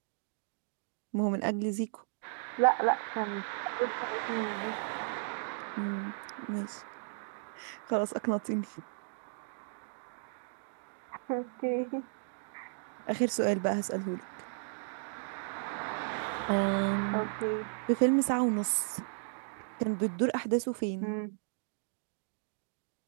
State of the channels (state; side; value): silent; left; digital silence